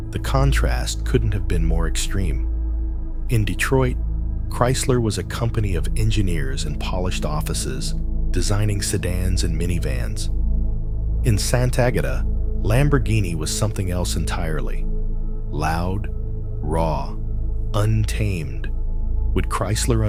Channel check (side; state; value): both; identical; correlation 1.00